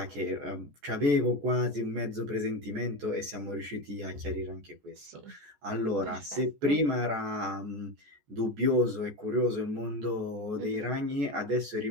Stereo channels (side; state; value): left; late; 14 ms